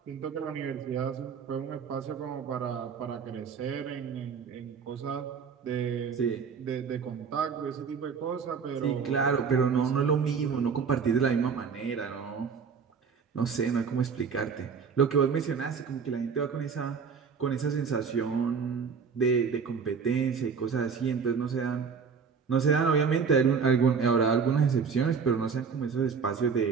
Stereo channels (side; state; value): left; quieter; 6.0 dB